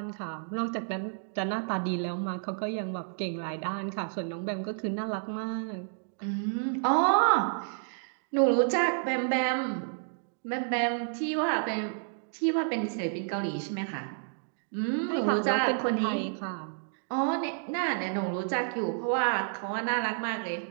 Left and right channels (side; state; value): left; silent; digital silence